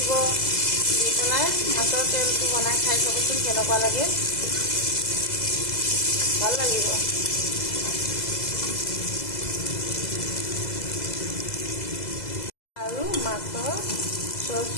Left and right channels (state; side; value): late; right; 2.0 ms